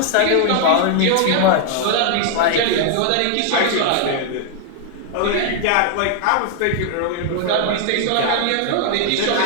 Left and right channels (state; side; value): different; both; correlation 0.00